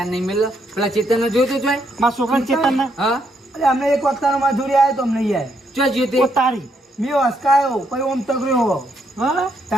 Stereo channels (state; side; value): normal; both; correlation 0.75